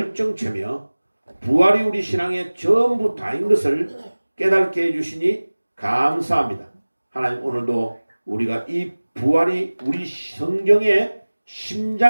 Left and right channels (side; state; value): both; inverted; correlation -1.00